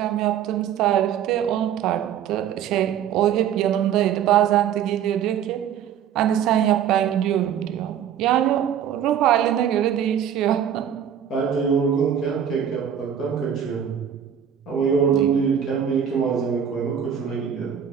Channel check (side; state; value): left; quieter; 9.1 dB